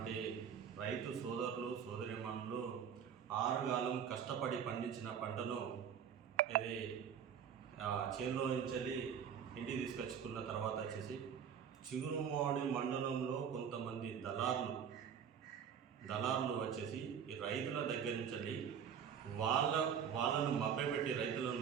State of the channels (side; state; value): left; quieter; 7.9 dB